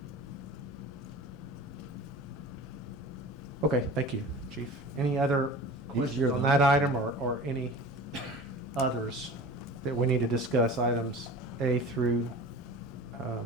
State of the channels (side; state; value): both; normal; correlation 0.38